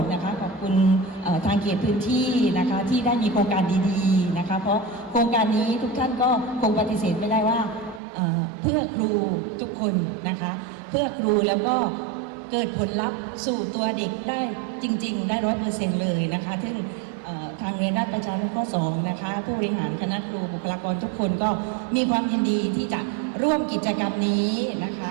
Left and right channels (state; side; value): drops out; left; at 8.0 s